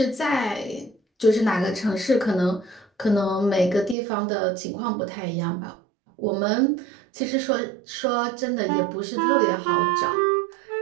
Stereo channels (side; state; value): left; drops out; at 4.0 s